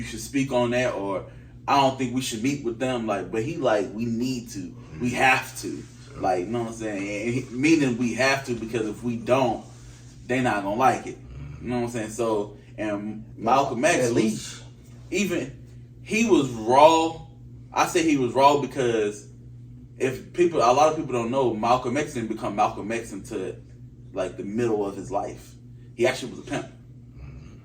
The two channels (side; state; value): both; identical; correlation 1.00